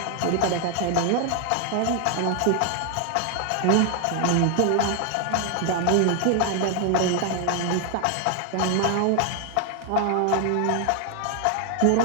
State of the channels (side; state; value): both; different; correlation 0.00